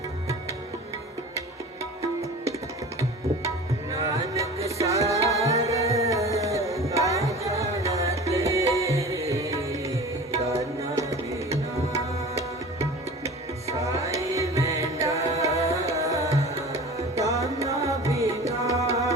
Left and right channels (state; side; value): normal; both; correlation 0.38